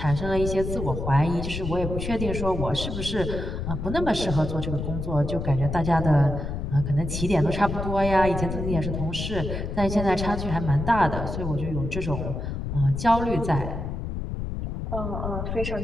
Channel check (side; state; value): left; noise; rumble, 4 dB below the sound